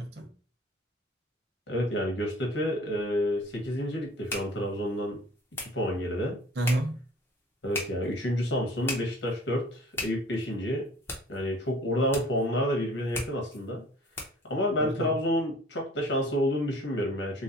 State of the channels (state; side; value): normal; both; correlation 0.49